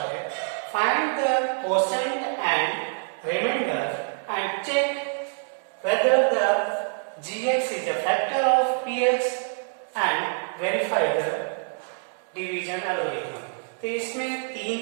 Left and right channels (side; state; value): left; silent; 61 dB below the other